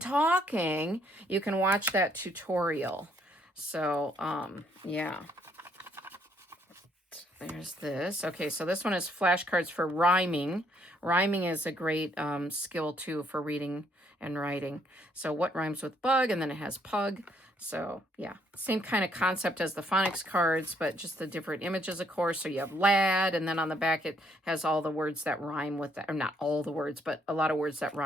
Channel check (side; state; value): both; normal; correlation 0.69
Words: you can watch that tutorial. So, yeah. There's this. Okay, so this one is flashcards for rhyming. Rhyming is a great skill, too, for reading and writing. So what rhymes with bug? And then it has pug. So, yeah, same kind of concept as the phonics cards, but just the different images, of course. So you have lad, and then on the back it has all the words that rhyme with that. Or not all the words, but a lot of words that